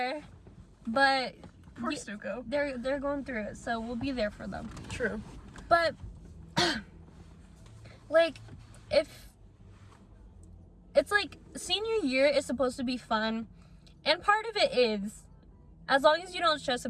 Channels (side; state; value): both; identical; correlation 1.00